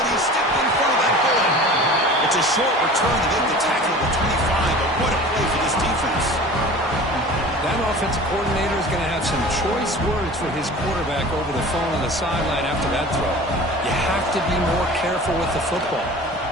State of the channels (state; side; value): normal; both; correlation 0.40